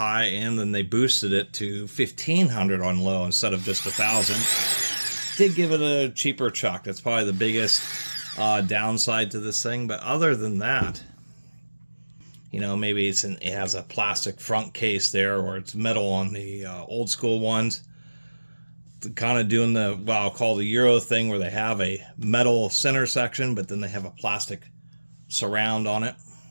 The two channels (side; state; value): both; inverted; correlation -1.00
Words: and then they boosted it to 1,500 on low instead of just 1,000. Did give it a cheaper chuck. That's probably the biggest downside to this thing. But other than that, you know, maybe it has a plastic front case there, or it's metal on the old school ones. Kind of doing the, well, I'll call the Euro thing, where they have a metal center section, but then they have a plastic surround on it.